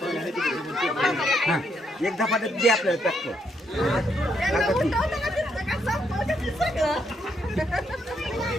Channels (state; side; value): normal; both; correlation 0.76